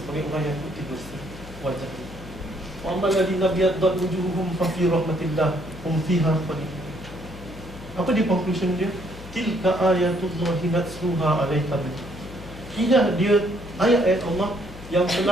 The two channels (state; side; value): noise; left; hum, 15 dB below the sound